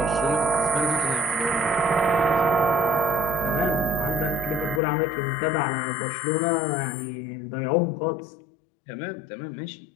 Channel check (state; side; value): drops out; right; at 4.8 s